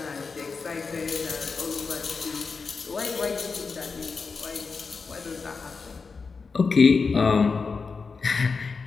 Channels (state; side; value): quieter; right; 4.8 dB